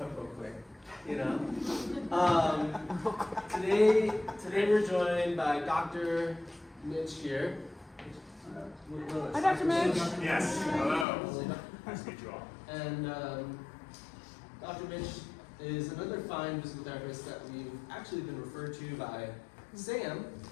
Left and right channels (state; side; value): drops out; right; at 11.1 s